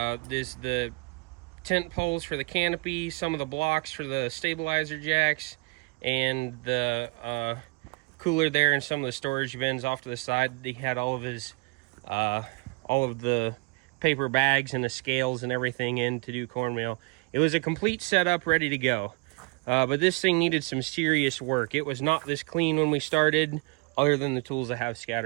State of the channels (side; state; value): left; quieter; 30.1 dB